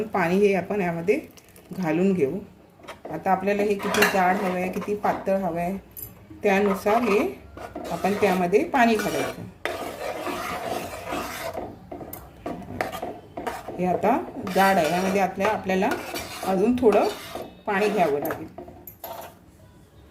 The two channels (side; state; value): both; identical; correlation 1.00